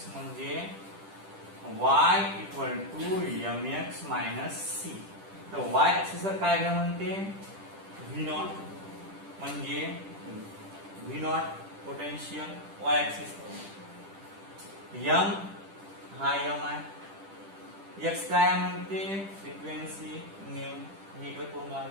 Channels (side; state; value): left; late; 10 ms